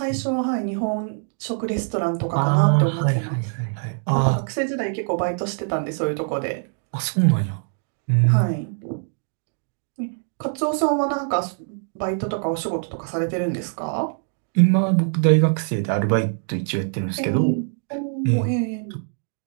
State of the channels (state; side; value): silent; left; 63 dB below the other